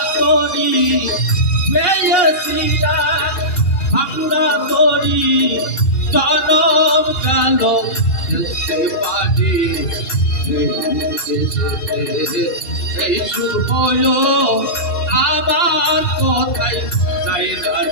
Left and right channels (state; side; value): late; right; 2.7 ms